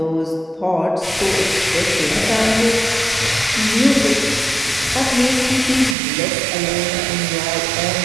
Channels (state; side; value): drops out; left; at 6.0 s